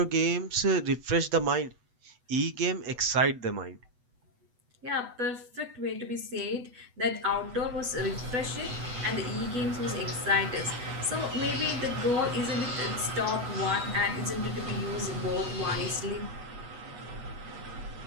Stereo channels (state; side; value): late; left; 8.1 ms